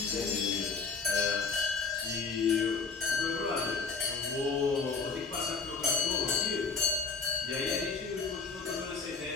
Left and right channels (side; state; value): right; quieter; 4.7 dB